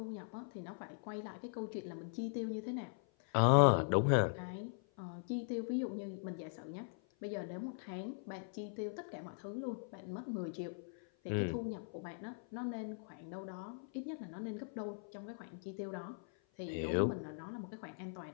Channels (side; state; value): right; silent; 51 dB below the other